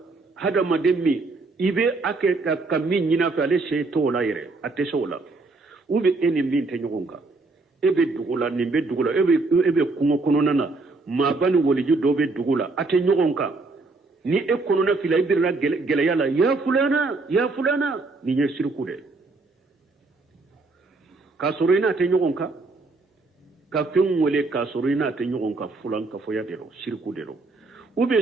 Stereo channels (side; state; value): left; quieter; 3.5 dB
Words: hada maden mi ibe ake ka min nyina fa le sey to la yere ate sola ube eni min te nyogonka ebe dugula ni be dugula ebe kungo kono nana ma bani woliju do be dugula ate nyogonka ni e kono na fila ibirna geleya la ya fulana ni nye sirku de kasurina te nyogonka ka fen wole kasurina te nyogonka fulan ka foya dero shirku dero ube